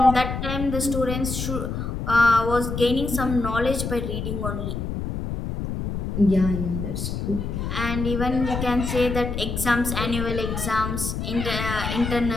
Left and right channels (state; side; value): noise; left; rumble, 4 dB below the sound